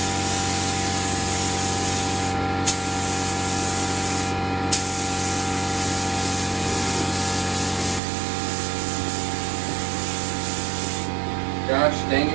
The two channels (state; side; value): drops out; left; at 8.0 s